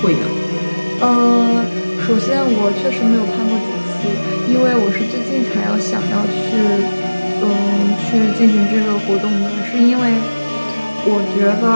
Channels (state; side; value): inverted; both; correlation -1.00